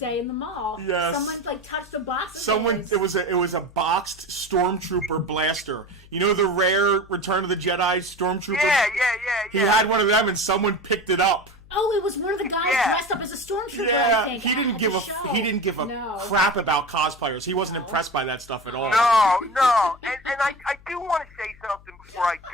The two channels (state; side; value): noise; left; hum, 23 dB below the sound